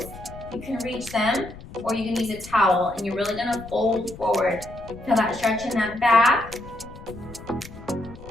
You can reach them or you can use a towel and you're really gonna fold forward. Feel that stretch in that back.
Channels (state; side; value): noise; left; rumble, 16 dB below the sound